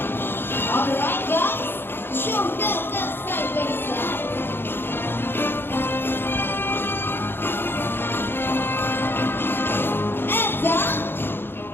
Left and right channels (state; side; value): late; right; 0.10 ms